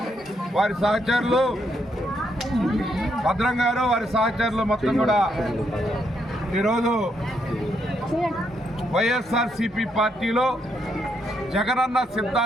వారి సహచరులు భద్రం గారు వారి సహచరులు మొత్తం కూడా ఈరోజు వైఎస్ఆర్సీపీ పార్టీలో జగనన్న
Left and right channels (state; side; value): normal; both; correlation 0.76